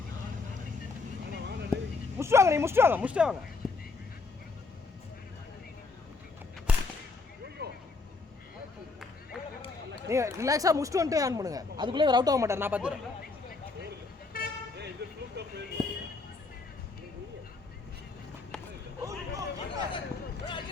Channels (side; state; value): right; quieter; 4.0 dB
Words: முடிச்சிட்டு வாங்க. நீங்க ரிலாக்ஸா முடிச்சிட்டு வந்துட்டு ஆன் பண்ணுங்க. அதுக்குள்ளே அவர் அவுட் ஆக மாட்டார். நான் பார்த்துறேன்.